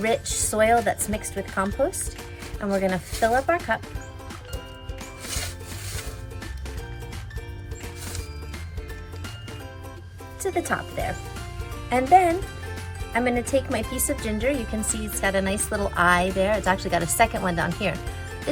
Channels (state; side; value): identical; both; correlation 1.00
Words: soil that's mixed with compost, and we're going to fill up our cup to the top there. And then I'm going to take my piece of ginger. You can see it's got a nice little eye there. It's actually got a second one down here.